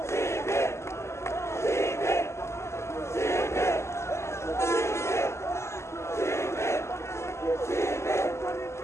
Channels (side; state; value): right; late; 0.13 ms